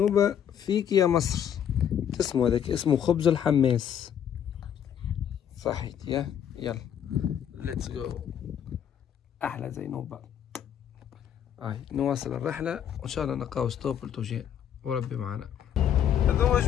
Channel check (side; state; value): right; quieter; 9.2 dB